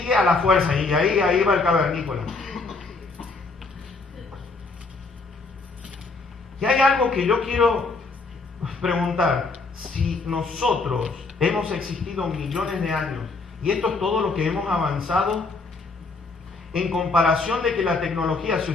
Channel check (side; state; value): right; quieter; 3.9 dB